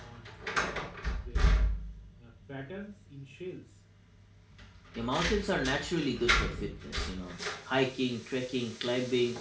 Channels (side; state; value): both; identical; correlation 1.00